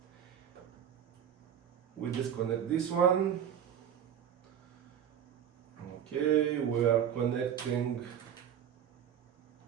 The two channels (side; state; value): left; quieter; 9.2 dB